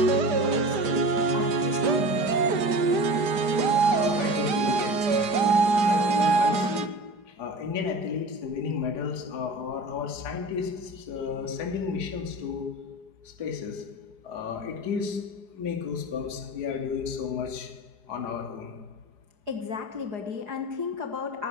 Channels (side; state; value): left; late; 4.9 ms